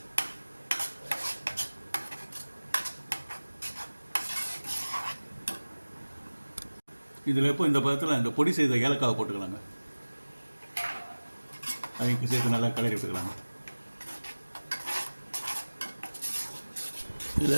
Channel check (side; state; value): both; inverted; correlation -1.00